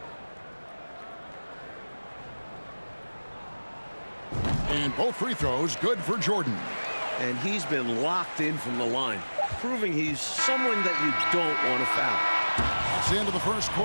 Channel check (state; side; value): inverted; both; correlation -1.00